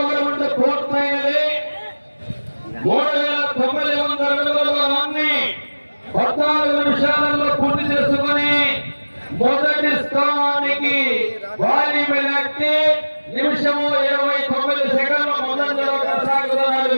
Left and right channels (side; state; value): both; inverted; correlation -1.00